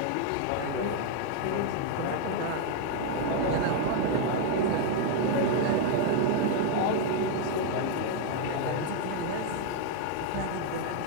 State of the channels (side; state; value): both; different; correlation 0.00